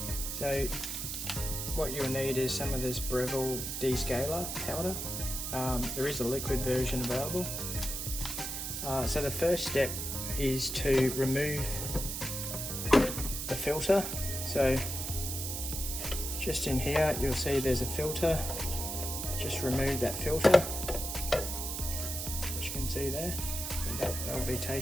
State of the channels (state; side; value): noise; right; hiss, 4 dB below the sound